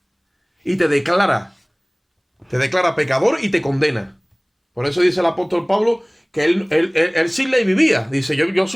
Y te declara pecador y te condena. Por eso dice el apóstol Pablo que él sin ley vivía. Dice, yo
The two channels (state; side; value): identical; both; correlation 1.00